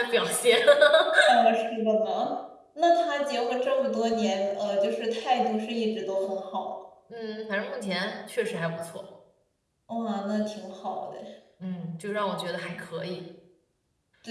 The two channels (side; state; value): both; identical; correlation 1.00